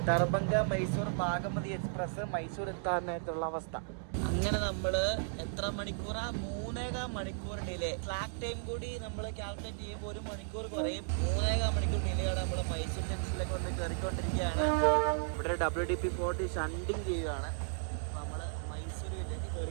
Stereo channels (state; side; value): silent; left; digital silence